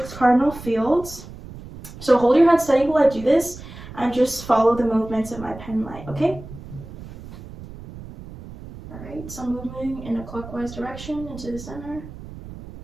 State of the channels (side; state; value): right; noise; rumble, 14 dB below the sound